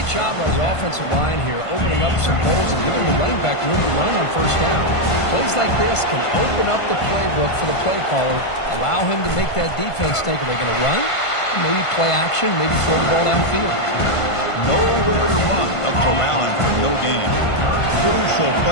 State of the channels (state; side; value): late; right; 1.5 ms